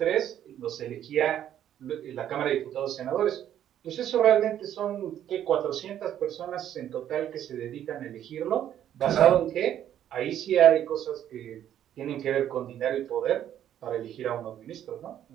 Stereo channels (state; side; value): quieter; left; 10.8 dB